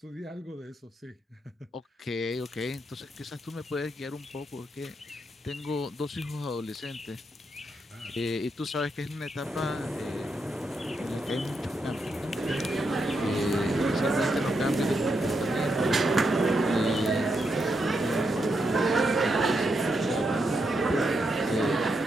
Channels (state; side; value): normal; both; correlation 0.82